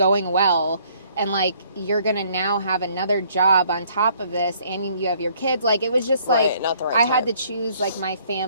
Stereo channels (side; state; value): both; inverted; correlation -0.62